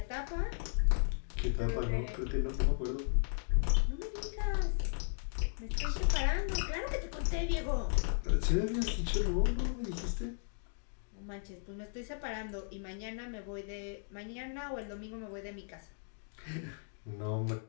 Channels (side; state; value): right; silent; digital silence